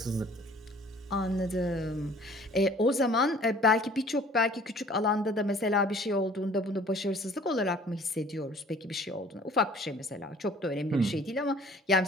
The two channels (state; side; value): normal; both; correlation 0.51